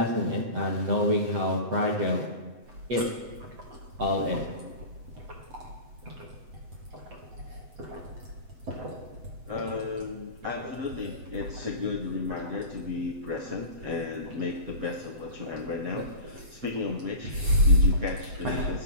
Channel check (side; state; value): left; late; 7.9 ms